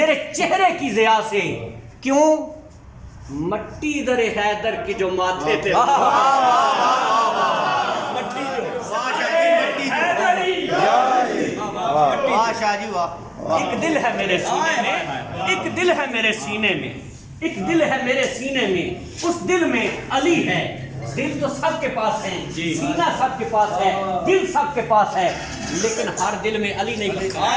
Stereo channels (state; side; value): identical; both; correlation 1.00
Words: چہرے کی ضیاء سے، کیوں؟ مٹی در حیدر کی جو ماتھے پہ ایک دل ہے میرے سینے میں، ایک دل ہے میرے سینے میں، ایک دل ہے میرے سینے میں، اس دل میں علی ہے۔ دل تو سب کے پاس ہے، سینہ سب کے پاس ہے، دل سب کے پاس ہے، لیکن ہر دل میں علی نہیں لکھا